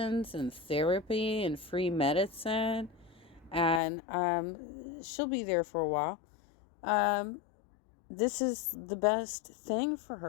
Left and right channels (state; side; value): drops out; right; at 3.8 s